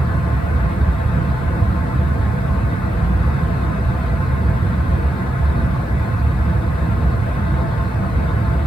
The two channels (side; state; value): both; normal; correlation 0.87